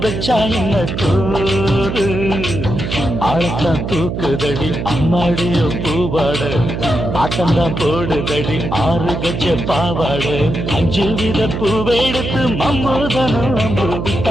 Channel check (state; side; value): noise; right; hum, 4 dB below the sound